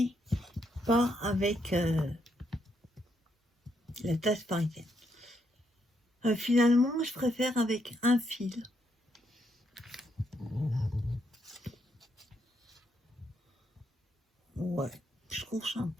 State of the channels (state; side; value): normal; both; correlation 0.77